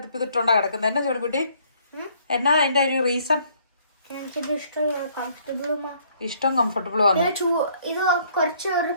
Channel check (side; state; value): both; inverted; correlation -0.64